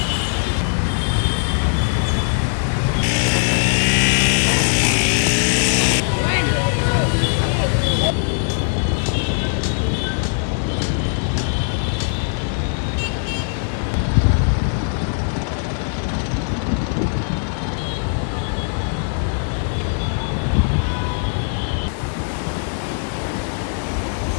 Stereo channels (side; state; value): right; silent; 66 dB below the other